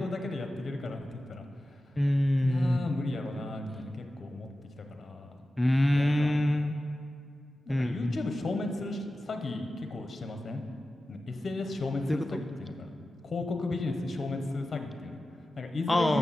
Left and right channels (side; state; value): both; normal; correlation 0.94